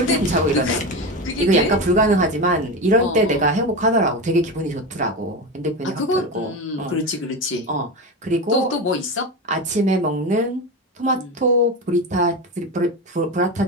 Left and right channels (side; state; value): both; normal; correlation 0.20